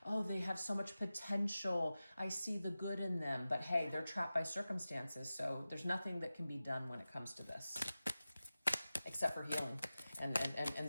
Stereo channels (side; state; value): both; inverted; correlation -0.95